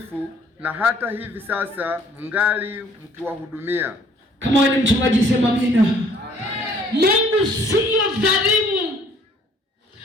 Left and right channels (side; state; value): both; normal; correlation 0.59